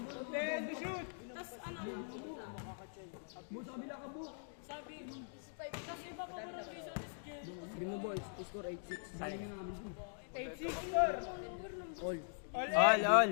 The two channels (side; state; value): right; silent; digital silence